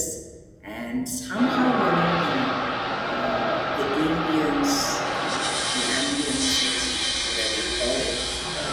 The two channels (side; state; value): both; identical; correlation 1.00